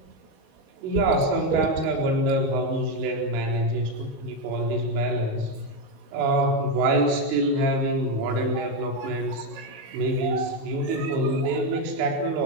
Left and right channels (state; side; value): late; left; 19 ms